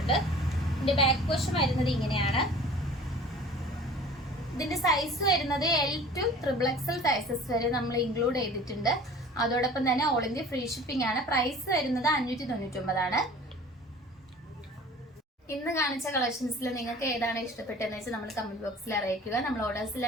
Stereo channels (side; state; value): both; normal; correlation 0.45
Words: ഇതിന്റെ ബാക്ക് പോർഷൻ വരുന്നത് ഇങ്ങനെയാണ്. ഇതിന്റെ സൈസ് വരുന്നത് L2 XXL സൈസസ് വരെ നമ്മൾ ഇൻക്ലൂഡ് ചെയ്തിട്ടുണ്ട്. അതോടൊപ്പം തന്നെ ഓൾ ഇന്ത്യ ഫ്രീ ഷിപ്പിംഗ് ആണ്. പ്രൈസ് വരുന്നത് 599 ആണ്. ഇന്ന് കാണിച്ച കളക്ഷൻസിൽ നിങ്ങൾക്ക് ഏതാണ് ഇഷ്ടപ്പെട്ടതെന്ന് വെച്ചാൽ നമ്മൾ കമന്റ് ബോക്സിൽ അറിയിക്കുക. നമ്മൾ ഓർഡേഴ്സ്